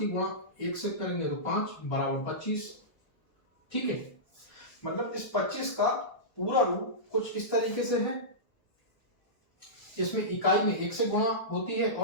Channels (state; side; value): late; right; 1.2 ms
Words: गुणा 1 से करेंगे तो 5 बराबर 25। ठीक है, मतलब इस 25 का पूरा रूप कुछ इस तरीके से है, इसमें इकाई में 1 से गुणा होती है